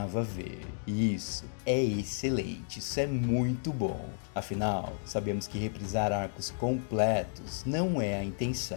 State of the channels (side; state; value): right; silent; digital silence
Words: ver. E isso é excelente, isso é muito bom. Afinal, sabemos que reprisar arcos completos não é a